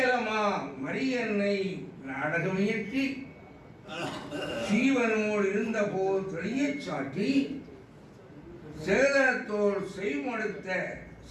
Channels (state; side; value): identical; both; correlation 1.00